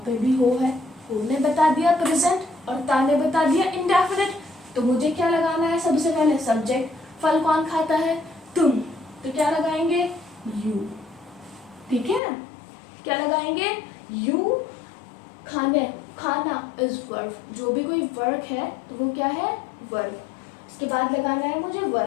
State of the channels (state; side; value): drops out; right; at 12.2 s